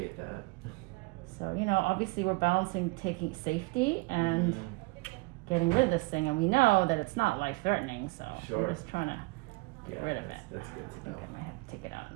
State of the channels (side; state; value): left; quieter; 25.0 dB